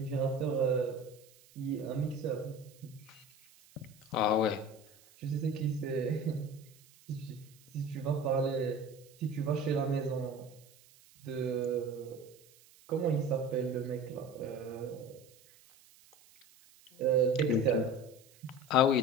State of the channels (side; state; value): right; noise; hiss, 26 dB below the sound